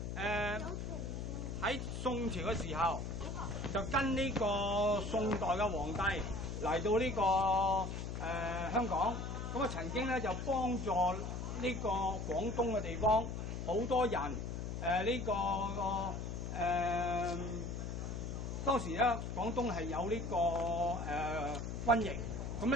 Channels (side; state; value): left; noise; hum, 5 dB below the sound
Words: 喺宋朝嘅時候，就跟呢個宋代嘅皇帝嚟到呢個香港，咁啊曾經咧就幫助呢個廣東嘅地方好多人當時咧廣東係有呢個瘟疫，咁